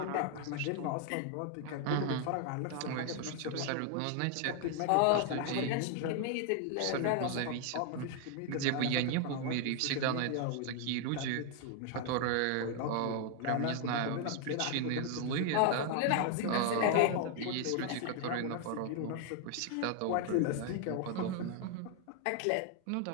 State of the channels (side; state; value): both; different; correlation 0.00